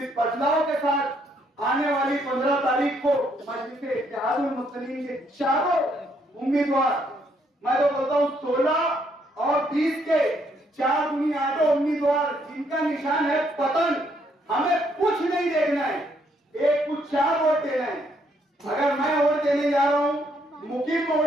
बदलाव के साथ आने वाली 15 तारीख को मजलिस इत्तेहादुल मुस्लिमीन के चारों उम्मीदवार, मैं तो बोलता हूँ 16 और 20 के 4 दूनी 8 उम्मीदवार जिनका निशान है पतन, हमें कुछ नहीं देखना है, एक कुछ 4 वोट देना है। अगर मैं वोट देने जा रहा हूं, मुकीम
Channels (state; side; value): normal; both; correlation 0.71